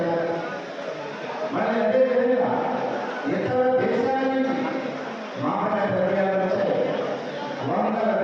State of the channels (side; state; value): both; identical; correlation 1.00